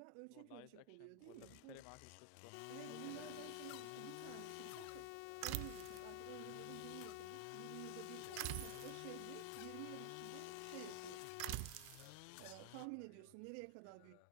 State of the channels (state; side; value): different; both; correlation 0.00